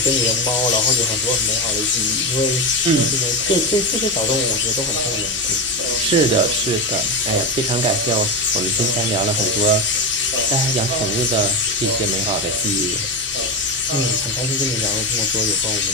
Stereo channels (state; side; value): normal; both; correlation 0.17